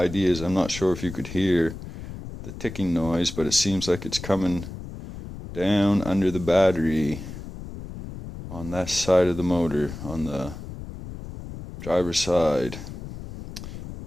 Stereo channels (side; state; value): left; noise; rumble, 11 dB below the sound